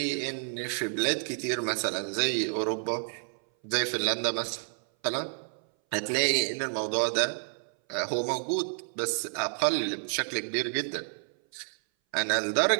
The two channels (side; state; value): left; silent; 58 dB below the other